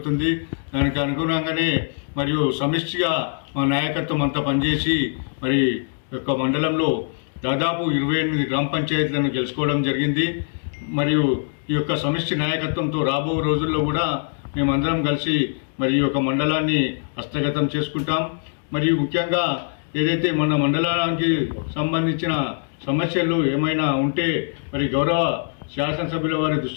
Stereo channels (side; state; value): right; silent; digital silence